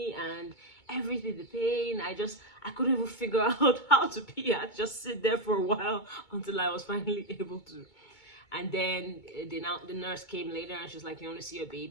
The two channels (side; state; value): right; late; 2.2 ms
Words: and everything, the pain. I couldn't even figure out how to pee. I just sit there for a while until I was finally able to. And then the nurse came later, and she's like, you want to see your